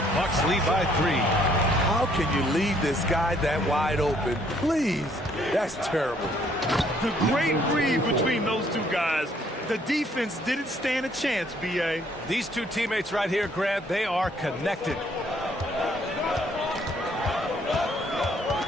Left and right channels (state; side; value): normal; both; correlation 0.65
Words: Bucks lead by 3. How can you leave this guy that wide open? Please, that's terrible. The great read between those two guys. The defense didn't stand a chance, B.A. These two teammates right here, Grant, they are connected.